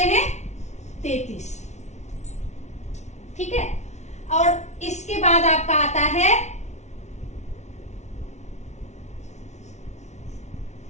हैं? 33। ठीक है। और इसके बाद आपका आता है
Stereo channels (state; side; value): late; right; 0.32 ms